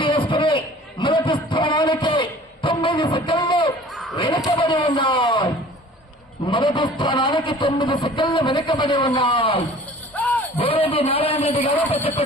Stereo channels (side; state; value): both; normal; correlation 0.47